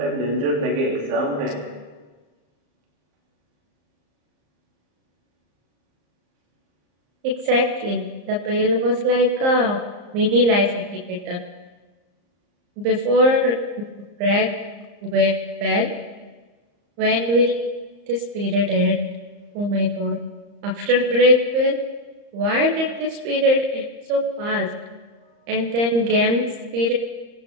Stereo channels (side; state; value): left; late; 34 ms